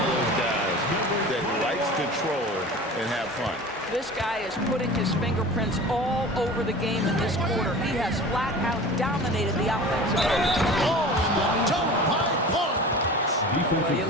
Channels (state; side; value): normal; both; correlation 0.37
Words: of those guys that likes control and have fun. This guy is putting his fingerprints all over the game in this quarter. He has flat out dominated the offensive end. Oh, and the jump by Barnes. Well, you